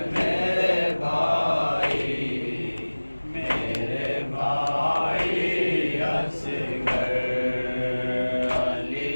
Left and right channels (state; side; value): inverted; both; correlation -1.00